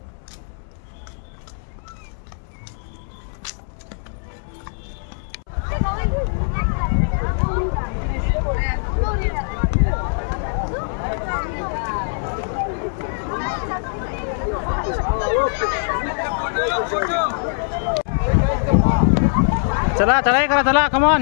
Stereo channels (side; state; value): right; silent; 64 dB below the other